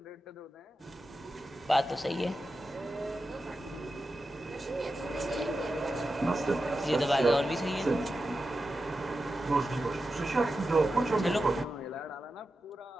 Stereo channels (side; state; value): both; normal; correlation 0.91